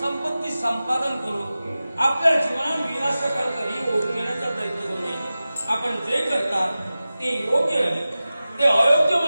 संपादन करून आपल्या जीवनात विनाशाकडे ओढून घेण्याचा प्रयत्न करू नये. आपण जे करता ते योग्य आहे, ते अयोग्य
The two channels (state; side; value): inverted; both; correlation -0.95